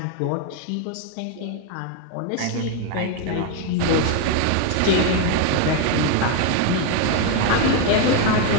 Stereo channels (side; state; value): both; different; correlation 0.01